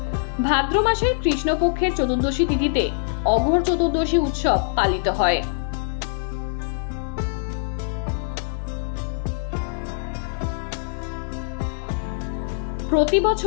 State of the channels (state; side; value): silent; right; 62 dB below the other